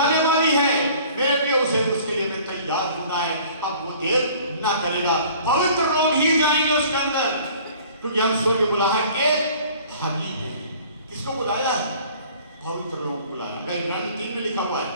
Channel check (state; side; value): inverted; both; correlation -0.50